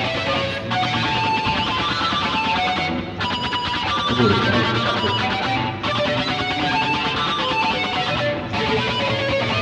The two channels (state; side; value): identical; both; correlation 1.00